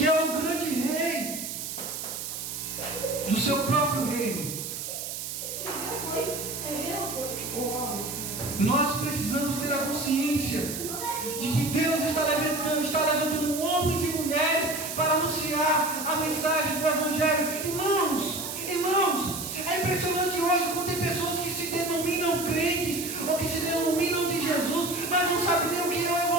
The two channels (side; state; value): right; noise; hiss, 6 dB below the sound